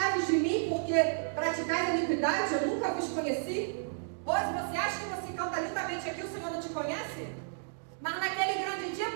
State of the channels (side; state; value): left; silent; digital silence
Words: de mim, porque praticais iniquidade, eu nunca vos conheci? Pois você acha que você canta lindamente aqui, o Senhor não te conhece? Mas naquele grande dia,